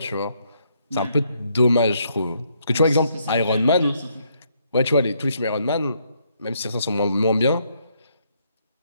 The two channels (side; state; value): both; inverted; correlation -0.73